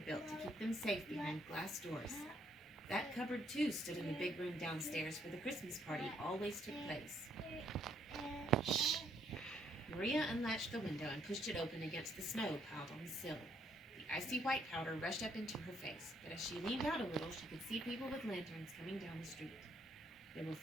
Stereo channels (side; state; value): both; normal; correlation 0.70